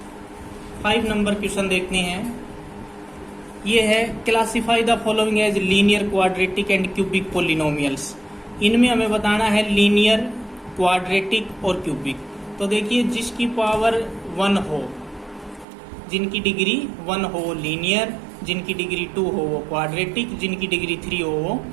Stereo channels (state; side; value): drops out; left; at 15.7 s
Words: 5 नंबर क्वेश्चन देखते हैं। ये है classify the following as linear, quadratic and cubic polynomials. इनमें हमें बताना है लीनियर, क्वाड्रेटिक और क्यूबिक। तो देखिए जिसकी पावर 1 हो, जिनकी डिग्री 1 हो वो लीनियर, जिनकी डिग्री 2 हो वो क्वाड्रेटिक, जिनकी डिग्री 3 हो वो